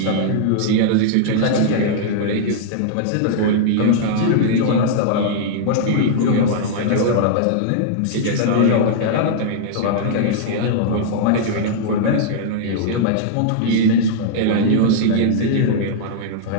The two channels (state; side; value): different; both; correlation -0.02